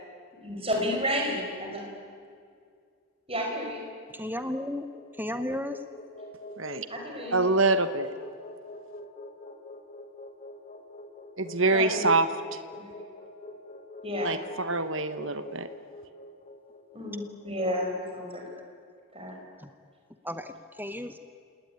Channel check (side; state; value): both; normal; correlation -0.15